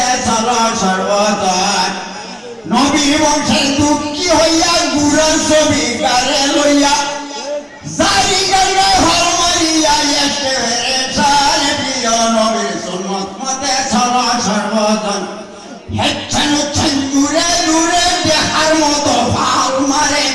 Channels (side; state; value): both; identical; correlation 1.00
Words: চলো সর্বজন নবী বংশের দুঃখী হইয়া গুড়ার ছবি কারে লইয়া জারি গাইলে হল মারিয়া এসে সার প্রিয় নবীর সুন্নত মতে চলো সর্বজন হেচ্ছেন হচ্ছেন দূরে দূরে দেখার মতো ভাল মারে